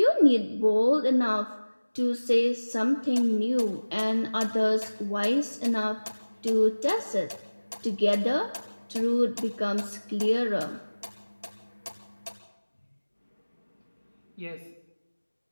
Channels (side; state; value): both; inverted; correlation -1.00